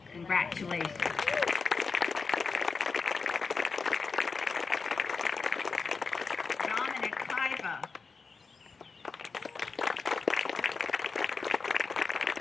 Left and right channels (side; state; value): right; quieter; 4.7 dB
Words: Congratulations. Dominic Paiva.